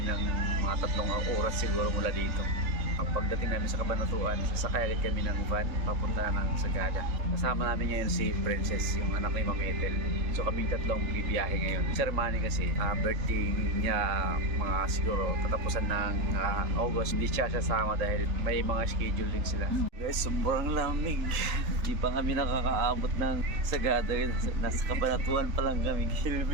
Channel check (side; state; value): left; late; 3.7 ms